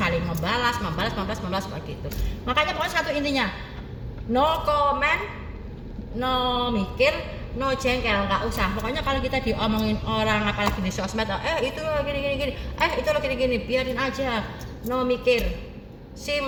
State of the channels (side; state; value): both; identical; correlation 1.00